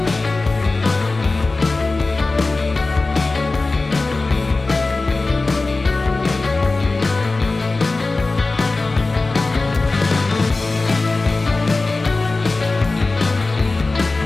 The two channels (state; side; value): quieter; right; 3.4 dB